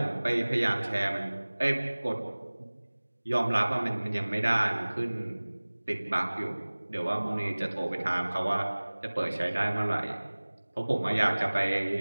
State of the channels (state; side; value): inverted; both; correlation -1.00